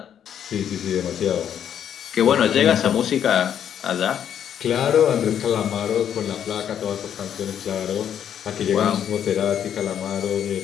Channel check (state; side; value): quieter; right; 9.2 dB